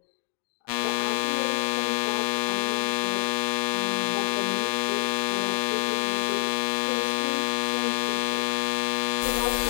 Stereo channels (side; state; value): right; silent; 61 dB below the other